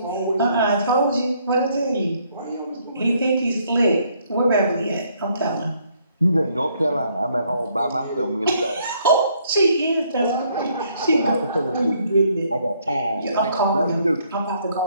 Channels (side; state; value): both; inverted; correlation -0.68